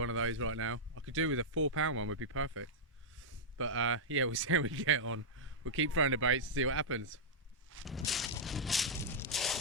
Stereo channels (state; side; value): normal; both; correlation -0.09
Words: of those right now. I could do with a £4 one, would be perfect. But yeah, we'll see how we get on. We'll keep throwing the baits to see what happens.